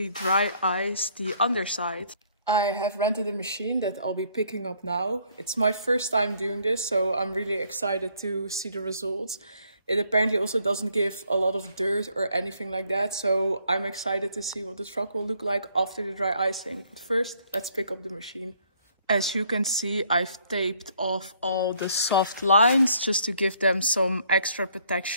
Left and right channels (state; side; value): inverted; both; correlation -0.66